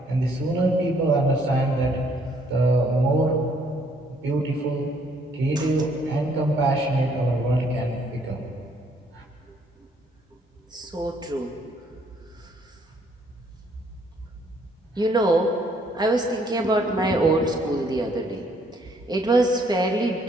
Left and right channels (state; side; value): normal; both; correlation 0.66